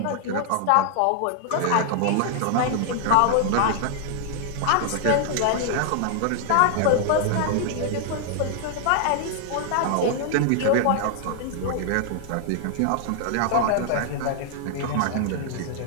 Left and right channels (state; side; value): different; both; correlation 0.00